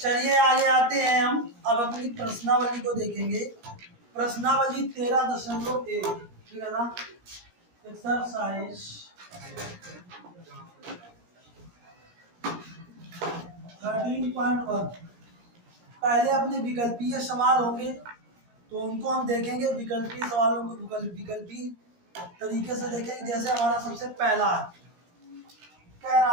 आगे आते हैं हम अब अपनी प्रश्नावली को देखेंगे। प्रश्नावली 13.1 ठीक है ना। एक्सरसाइज 13.1 पहले अपने विकल्पीय सवाल होंगे तो उनको हम देखेंगे। विकल्पीय सवालों को विकल्पीय तरीके से देखेंगे। जैसे हमारा सबसे पहला कह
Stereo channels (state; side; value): late; left; 17 ms